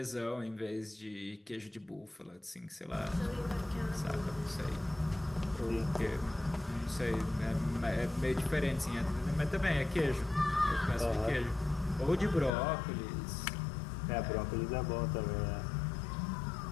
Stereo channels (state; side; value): drops out; right; at 12.5 s